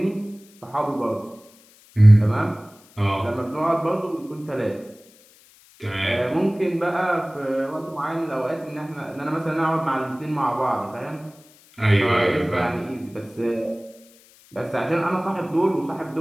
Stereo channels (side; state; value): left; noise; hiss, 27 dB below the sound